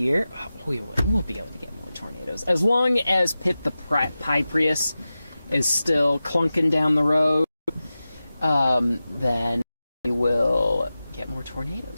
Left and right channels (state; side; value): inverted; both; correlation -0.94